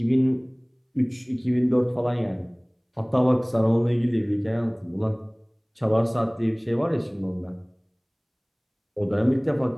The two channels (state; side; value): identical; both; correlation 1.00